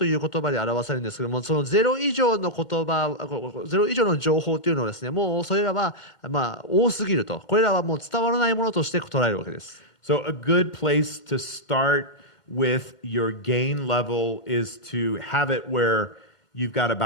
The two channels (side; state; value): right; late; 2.1 ms